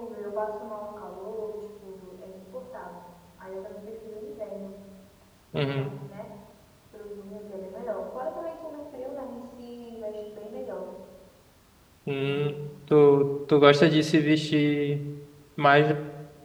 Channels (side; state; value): both; identical; correlation 1.00